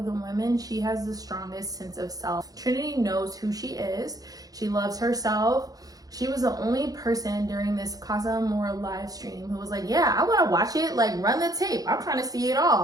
the women, she has the strongest sense of self. Trinity knows who she is. She loves herself. She was the only person during this Casa Amor live stream who was like, yeah, I want to watch it, like run the tape. I'm trying to see it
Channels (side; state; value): left; late; 0.18 ms